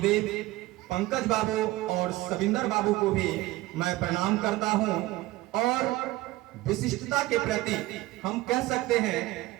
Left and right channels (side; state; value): left; quieter; 18.0 dB